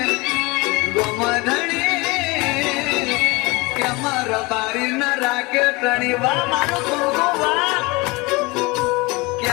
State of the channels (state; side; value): quieter; right; 24.7 dB